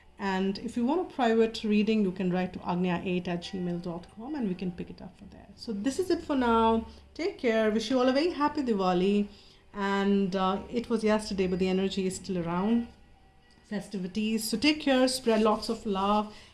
And if you want a private reading, you can write to agnya8@gmail.com and we can pick it up from there. So this is it for now. Take care. Wish you all a very happy Diwali. And it was yesterday, but the energy is still around. Festivities. So take care, spread lots of love,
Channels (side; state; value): both; identical; correlation 1.00